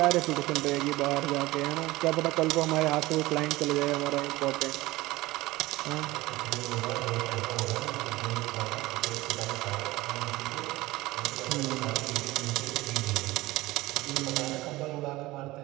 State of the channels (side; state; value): left; quieter; 19.2 dB